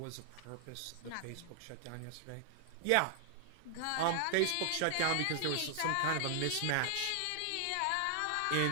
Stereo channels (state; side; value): different; both; correlation 0.00